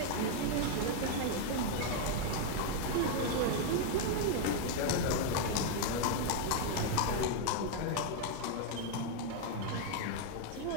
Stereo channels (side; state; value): both; different; correlation 0.00